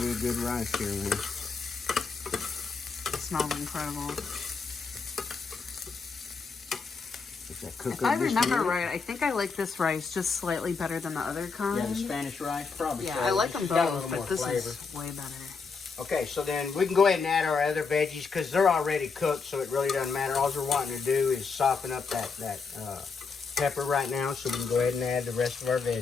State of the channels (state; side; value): quieter; right; 4.9 dB